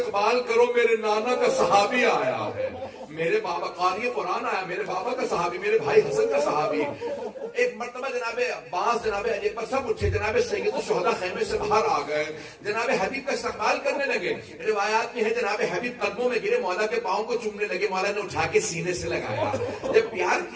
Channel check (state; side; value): identical; both; correlation 1.00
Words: کرو, میرے نانا کا صحابی آیا ہے, میرے بابا قاری قرآن آیا, میرے بابا کا صحابی, میرے بھائی حسن کا صحابی. ایک مرتبہ جناب عباس جناب علی پر سب اٹھے, جناب سید الشہداء خیمے سے باہر آ گئے, جناب حبیب کا استقبال کرنے لگے. روایات میں ہے جناب حبیب قدموں میں گرے, مولا کے پاؤں کو چومنے لگے, مولا نے اٹھا کے سینے سے لگایا. جب پیار